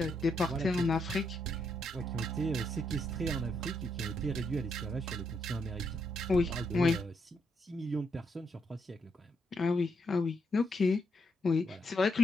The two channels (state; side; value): normal; both; correlation 0.78